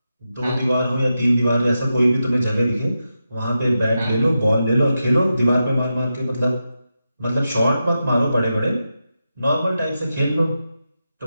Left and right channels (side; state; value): both; inverted; correlation -0.89